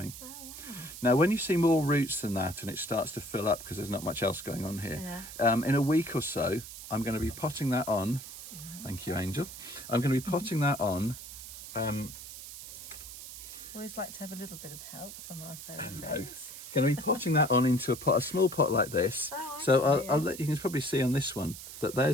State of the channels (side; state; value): right; noise; hiss, 12 dB below the sound